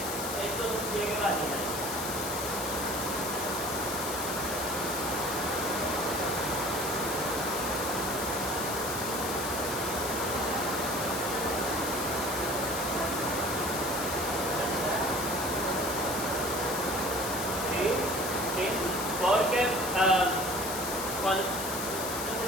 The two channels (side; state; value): left; noise; hiss, 5 dB below the sound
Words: es un pliegue vaginal. Porque cuando no sé